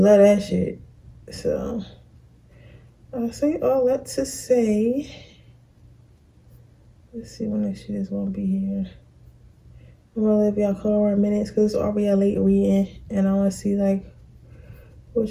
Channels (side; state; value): both; identical; correlation 1.00